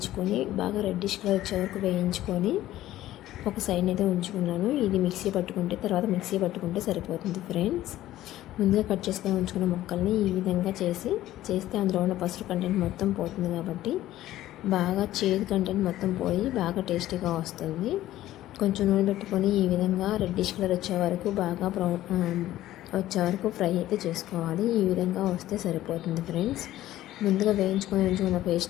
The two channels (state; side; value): quieter; right; 14.3 dB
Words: బాగా రెడ్డిష్ కలర్ వచ్చే వరకు వేయించుకొని ఒక సైడ్ అయితే ఉంచుకున్నాను. ఇది మిక్సీ పట్టుకుంటే సరిపోతుంది ఫ్రెండ్స్. ముందుగా కట్ చేసుకొని ఉంచుకున్న ముక్కల్ని ఈ విధంగా చేస్తే అందులో ఉన్న పసుపు కంటెంట్ మొత్తం పోతుంది కాబట్టి బాగా చేదు కంటెంట్ మొత్తం పోయి బాగా టేస్టీగా వస్తుంది. కొంచెం నూనె పెట్టుకొని ఈ విధంగా రెడ్డిష్ కలర్ వచ్చే వరకు బాగా వచ్చే వరకు ఫ్రై అయితే చేసుకోవాలి. ఈ విధంగా వస్తే సరిపోతుంది ఫ్రెండ్స్. ముందుగా వేయించుకొని ఉంచుకున్న